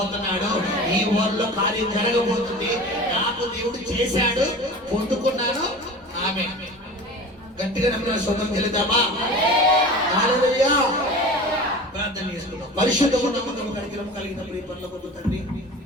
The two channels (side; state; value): both; normal; correlation 0.36